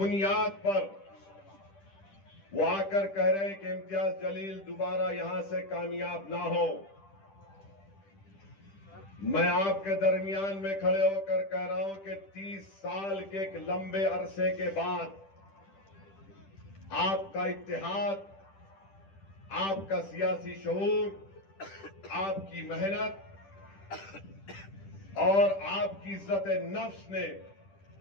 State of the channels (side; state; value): right; late; 10 ms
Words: पर वो आकर कह रहे हैं कि इम्तियाज जलील दोबारा यहां से कामयाब ना हो। मैं आपके दरमियान में खड़े होकर कह रहा हूं कि 30 साल के एक लंबे अरसे के बाद आपका इत्तेहाद, आपका सियासी शऊर, आपकी मेहनत और आपकी इज्जत नफ्स ने,